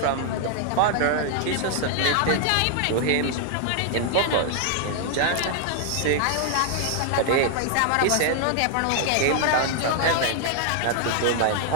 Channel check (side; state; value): both; different; correlation 0.00